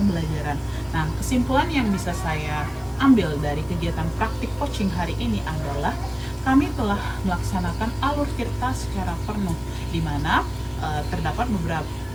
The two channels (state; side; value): noise; left; hiss, 26 dB below the sound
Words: Nah, kesimpulan yang bisa saya ambil dari kegiatan praktik coaching hari ini adalah kami telah melaksanakan alur tirta secara penuh, di mana terdapat